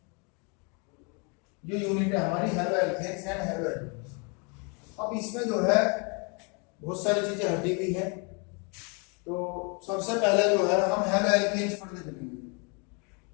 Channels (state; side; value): quieter; right; 34.0 dB